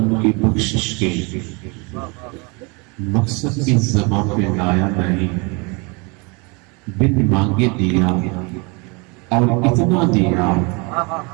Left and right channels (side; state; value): left; quieter; 29.8 dB